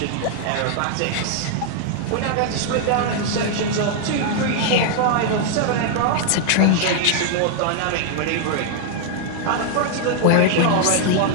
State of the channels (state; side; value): different; both; correlation 0.00